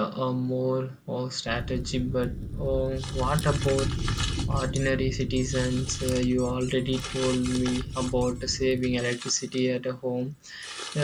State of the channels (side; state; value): both; identical; correlation 1.00